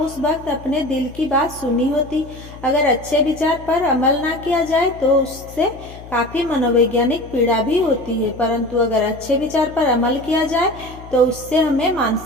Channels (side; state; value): left; noise; hum, 17 dB below the sound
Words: वक्त अपने दिल की बात सुनी होती। अगर अच्छे विचार पर अमल ना किया जाए तो उससे काफी मनोवैज्ञानिक पीड़ा भी होती है, परंतु अगर अच्छे विचार पर अमल किया जाए तो उससे हमें